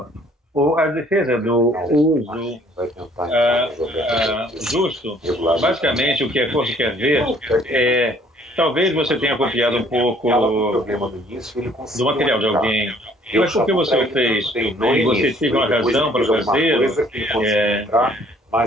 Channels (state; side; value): normal; both; correlation 0.59